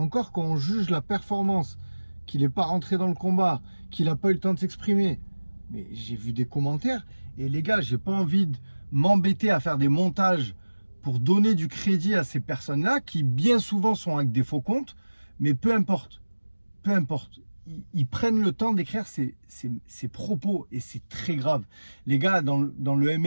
quand on juge la performance, qu'il n'est pas rentré dans le combat, qu'il n'a pas eu le temps de s'exprimer. Mais j'ai vu des commentaires. Et les gars, j'ai pas envie de m'embêter à faire des montages pour donner du crédit à ces personnes-là qui bien souvent sont avec des faux comptes. Mais peu importe. Peu importe. Ils prennent le temps d'écrire ces propos. Et c'est très grave. Les gars, dans le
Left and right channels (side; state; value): both; inverted; correlation -1.00